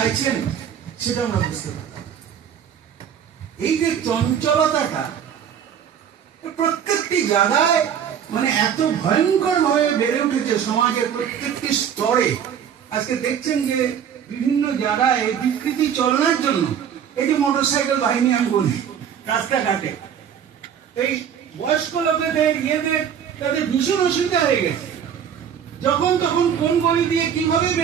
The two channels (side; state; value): left; quieter; 8.5 dB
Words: সেটা আমরা বুঝতে পারি। এই যে চঞ্চলতাটা প্রত্যেকটি জায়গায় মানে এত ভয়ঙ্কর ভাবে বেড়ে উঠেছে সমাজের প্রত্যেকটি স্তরে। আজকে দেখছেন যে বিভিন্ন জায়গায় বিকৃতি চলনের জন্য এই যে মোটরসাইকেল বাহিনী আমি বলি রাস্তাঘাটে, এই বয়স্ক লোকেদের তাদের ভীষণ অসুবিধা হয়ে গেছে, যখন তখন কোন গলি দিয়ে কিভাবে